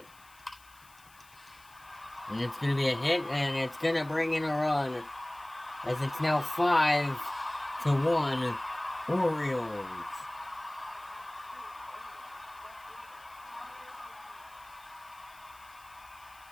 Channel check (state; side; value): noise; left; hiss, 25 dB below the sound